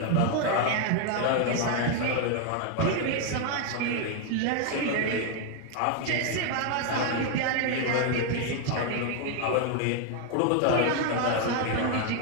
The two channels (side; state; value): both; different; correlation 0.01